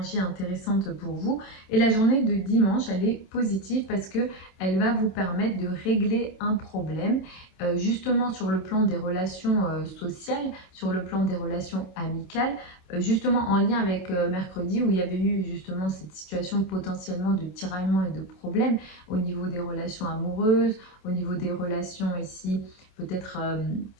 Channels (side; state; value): right; late; 27 ms